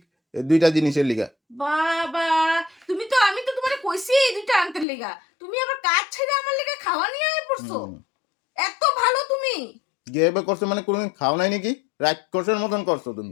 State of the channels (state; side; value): drops out; right; at 4.9 s